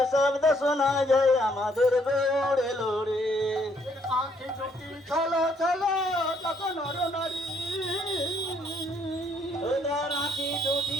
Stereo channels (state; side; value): normal; both; correlation 0.68